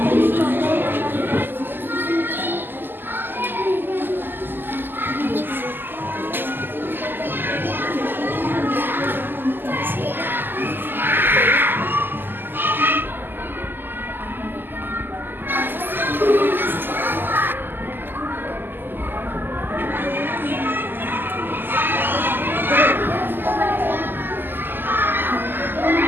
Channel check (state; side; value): late; left; 0.093 ms